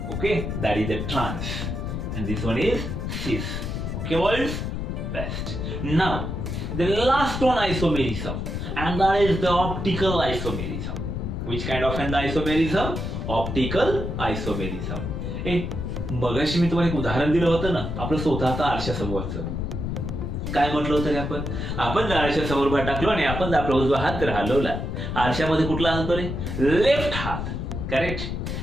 Okay, that is the trans, and this one is cis. Okay, boys, best. Now, the last one isomerism, and that is the optical isomerism. Which kind of an isomerism? Optical isomerism. मगाशी मी तुम्हाला एक उदाहरण दिलं होतं ना, आपलं स्वतःचं आरशासमोरचं. काय म्हटलं होतं आपण जर आरशा समोर टाकलो आणि आपण जर आपला उजवा हात जर हलवला, आरशामध्ये कुठला हात रे? लेफ्ट हात, करेक्ट.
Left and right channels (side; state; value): left; noise; rumble, 4 dB below the sound